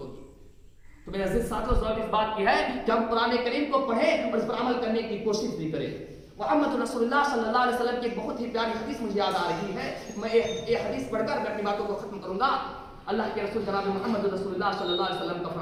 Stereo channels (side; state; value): both; identical; correlation 1.00